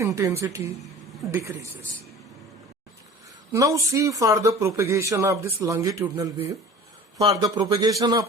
decreases. Now see for the propagation of this longitudinal wave. For the propagation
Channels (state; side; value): normal; both; correlation 0.41